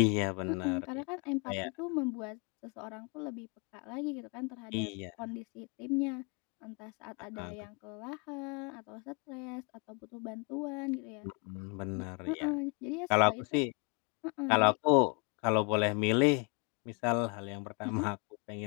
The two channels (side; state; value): right; quieter; 32.5 dB